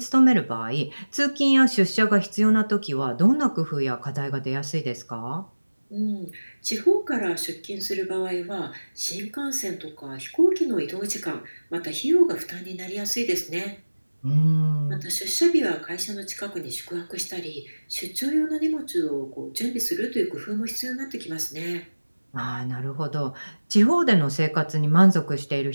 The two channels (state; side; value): inverted; both; correlation -1.00